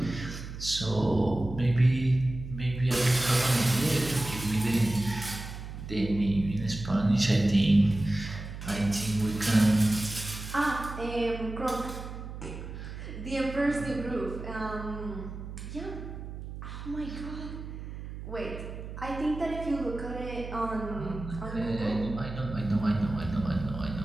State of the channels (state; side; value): noise; right; hum, 10 dB below the sound